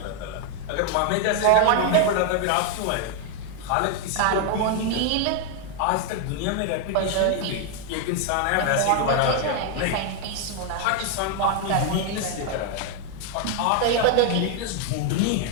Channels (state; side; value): different; both; correlation 0.00